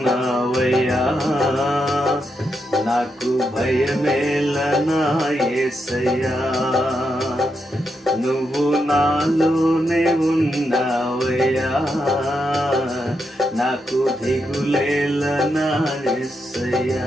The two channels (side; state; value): both; normal; correlation 0.83